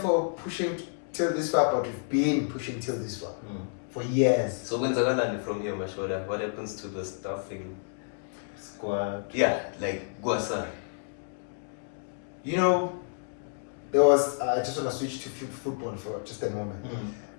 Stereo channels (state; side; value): silent; right; digital silence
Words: for pushing till this far, but we've been pushing till this far for years. So when's I gonna from here, Mashoda? What happens to the staffing squad? Yeah, like Guasan. You know, there was. I just want to switch to football for just a moment.